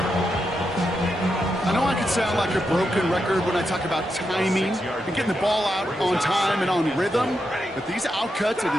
I know I can sound like a broken record when I talk about timing and getting the ball out on time and on rhythm, but these outcuts, it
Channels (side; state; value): both; normal; correlation 0.85